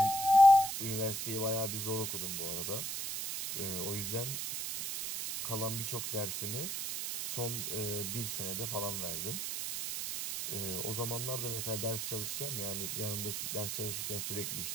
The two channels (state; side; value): noise; right; hiss, 3 dB below the sound